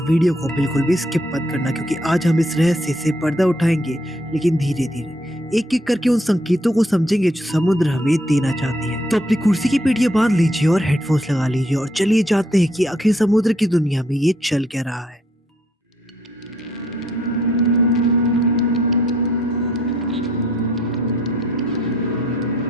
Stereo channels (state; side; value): normal; both; correlation 0.68